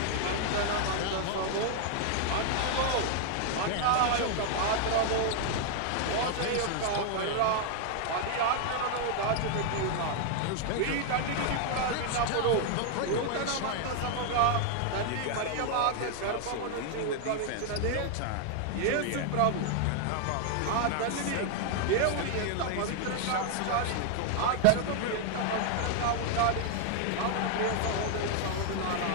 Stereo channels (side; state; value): both; different; correlation 0.00